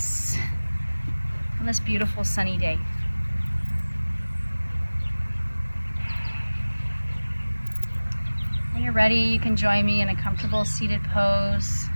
on this beautiful sunny day. When you're ready, you can join me in a comfortable seated pose,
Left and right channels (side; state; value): both; inverted; correlation -1.00